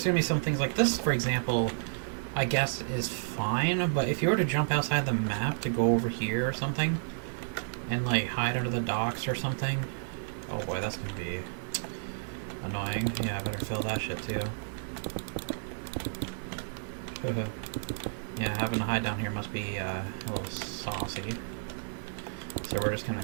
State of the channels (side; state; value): left; silent; digital silence